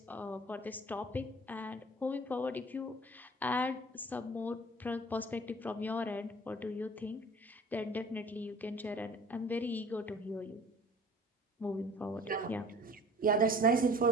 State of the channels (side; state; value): both; normal; correlation 0.47